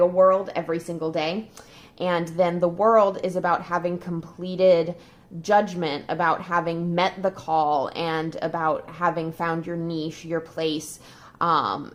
world every single day. And then the World is about having completed judgment, about having met the call, and about having found your niche, your place,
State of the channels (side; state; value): both; identical; correlation 1.00